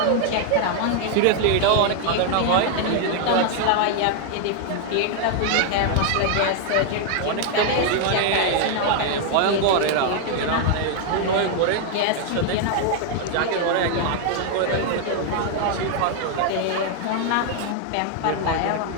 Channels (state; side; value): different; both; correlation 0.00